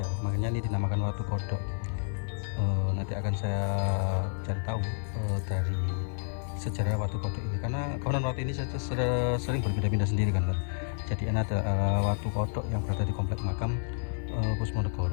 makanya ini dinamakan batu kodok. Nanti akan saya cari tahu dari sejarah watu kodok ini, karena konon watu ini sering berpindah-pindah sendiri kan. Jadi ini ada watu kodok yang berada di komplek makam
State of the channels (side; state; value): right; silent; digital silence